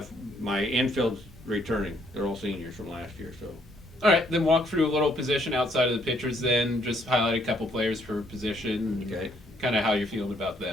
infield's returning. They're all seniors from last year. So. All right, then walk through a little position outside of the pitchers. Then just highlight a couple players per position. Okay. Kind of how you're feeling about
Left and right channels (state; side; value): normal; both; correlation 0.68